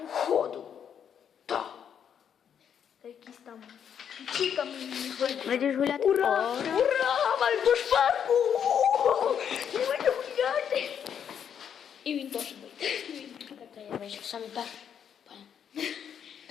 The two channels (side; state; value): right; quieter; 8.3 dB